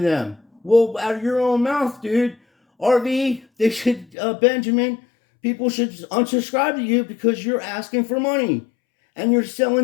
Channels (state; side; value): drops out; right; at 4.0 s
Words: them. Well, out of your own mouth, dude. RV, they should, Benjamin, people should unsubscribe to you because you're asking for money. And you're